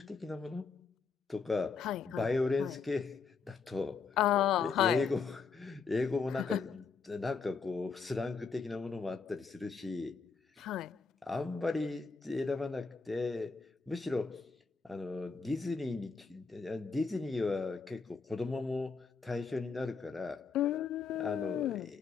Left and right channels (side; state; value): right; quieter; 5.0 dB